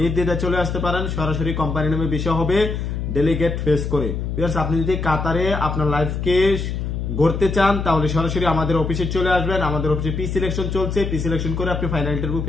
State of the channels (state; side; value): noise; left; hum, 3 dB below the sound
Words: চলে আসতে পারেন, সরাসরি কোম্পানির নামে ভিসা হবে ডেলিগেট ফেস করে। ভিউয়ার্স, আপনি যদি কাতারে আপনার লাইফকে গড়তে চান তাহলে সরাসরি আমাদের অফিসে চলে আসবেন। আমাদের অফিসে পি সিলেকশন চলছে, পি সিলেকশন করে আপনি ফাইনাল ইন্টারভিউ